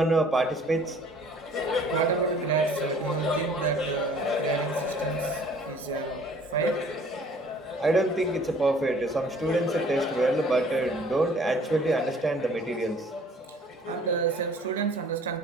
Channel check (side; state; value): both; normal; correlation 0.53